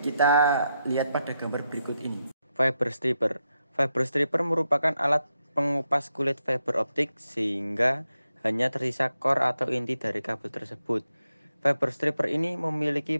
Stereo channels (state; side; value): inverted; both; correlation -0.85